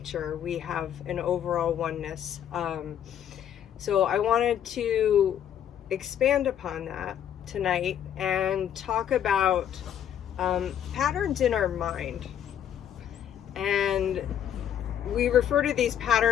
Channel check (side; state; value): right; quieter; 9.7 dB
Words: We have an overall oneness. So I wanted to expand upon that tonight and talk about patterns in our mind. And we refer to these